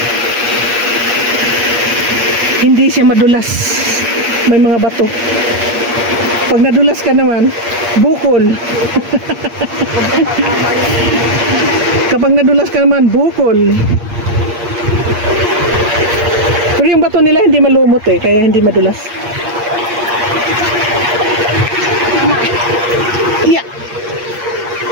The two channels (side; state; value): left; late; 8.6 ms